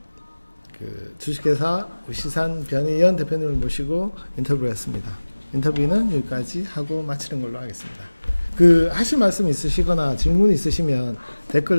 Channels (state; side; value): inverted; both; correlation -1.00